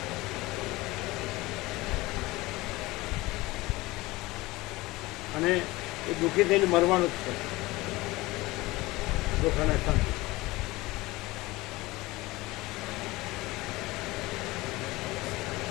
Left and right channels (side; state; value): right; quieter; 20.4 dB